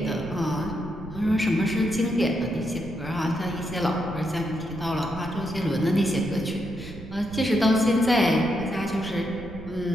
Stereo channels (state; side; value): noise; right; rumble, 14 dB below the sound